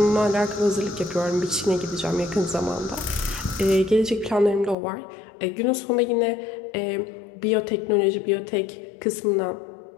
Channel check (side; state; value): right; drops out; at 4.8 s